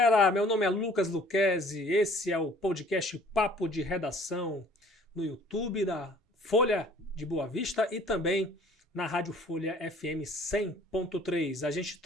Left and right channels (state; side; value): normal; both; correlation 0.54